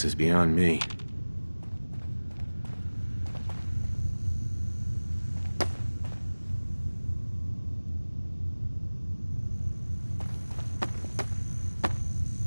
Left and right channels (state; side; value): inverted; both; correlation -1.00